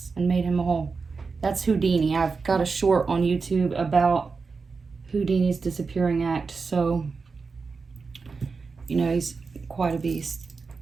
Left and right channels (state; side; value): quieter; left; 4.7 dB